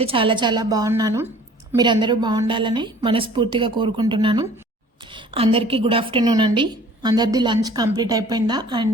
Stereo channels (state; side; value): normal; both; correlation 0.50